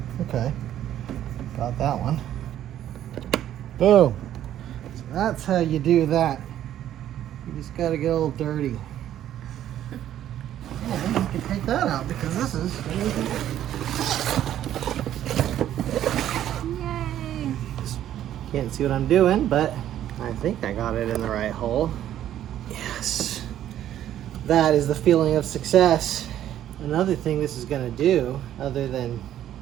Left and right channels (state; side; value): quieter; left; 11.6 dB